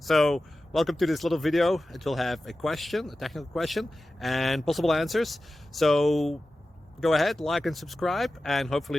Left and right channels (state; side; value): normal; both; correlation 0.94